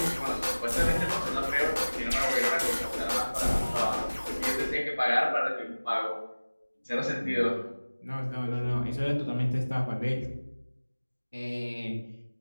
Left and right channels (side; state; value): both; inverted; correlation -1.00